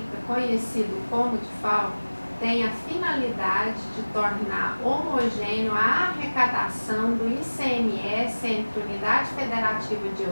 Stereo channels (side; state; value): both; inverted; correlation -1.00